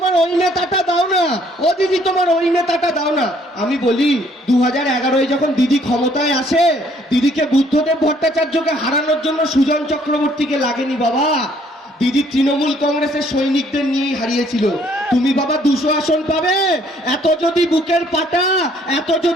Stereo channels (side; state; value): both; normal; correlation 0.63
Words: ওই নেতাটা দাও না, ও দিদি তোমার ওই নেতাটা দাও না। আমি বলি 2011-এ যখন দিদি ক্ষমতায় আসে, দিদিকে বুদ্ধদেব ভট্টাচার্যকে হারানোর জন্য সুজন চক্রবর্তীকে লাগেনি বাবা, দিদি তৃণমূল কংগ্রেসের সৈনিকদের নিয়েই হারিয়েছিল। তুমি বাবা 200 আসন পাবে, এত যদি বুকের পাটা, এত